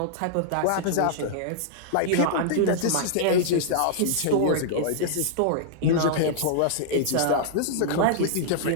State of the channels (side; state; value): both; different; correlation -0.02